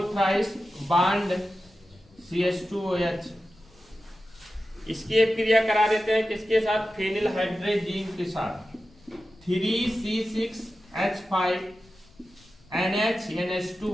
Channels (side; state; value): left; noise; rumble, 28 dB below the sound